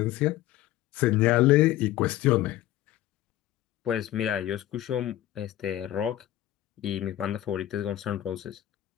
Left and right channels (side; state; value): right; quieter; 14.2 dB